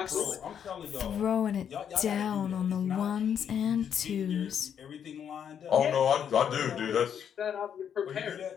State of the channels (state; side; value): quieter; right; 8.4 dB